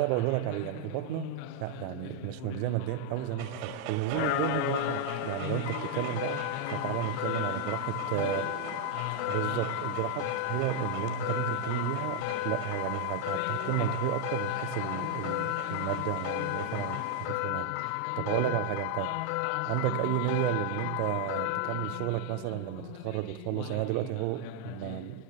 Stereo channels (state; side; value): different; both; correlation 0.00